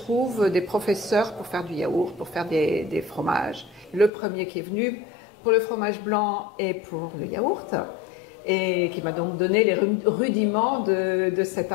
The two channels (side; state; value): right; drops out; at 4.1 s